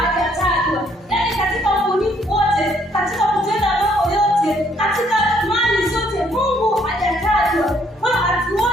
Yaani katika ubunifu wote, katika kutenda mambo yote, katika mali zote, Mungu hajatajwa. Kwa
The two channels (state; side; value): normal; both; correlation 0.66